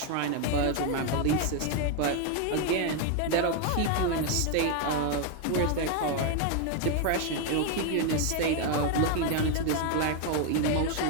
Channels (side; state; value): both; different; correlation 0.01